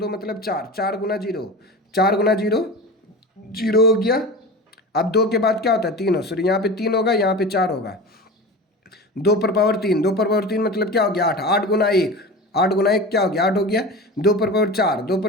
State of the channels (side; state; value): both; normal; correlation 0.31